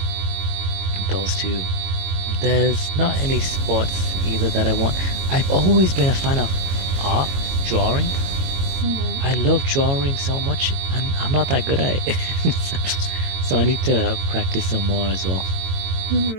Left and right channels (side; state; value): left; late; 22 ms